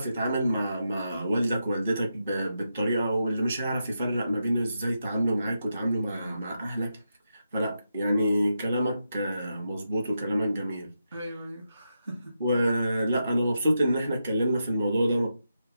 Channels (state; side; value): inverted; both; correlation -0.86